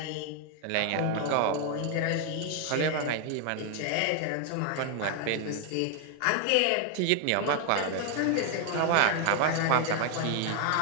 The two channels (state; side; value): different; both; correlation 0.00